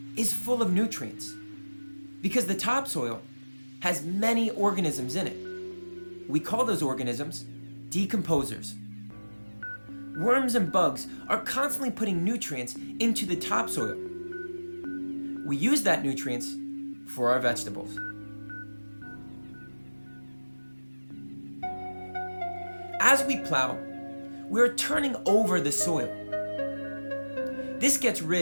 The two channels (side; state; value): both; inverted; correlation -1.00